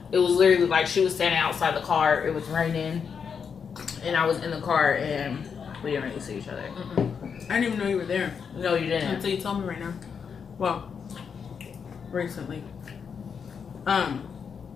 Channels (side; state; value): right; quieter; 6.5 dB